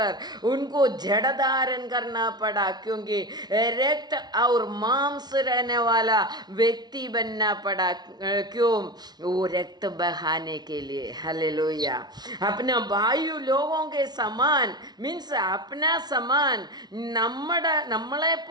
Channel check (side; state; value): left; late; 0.19 ms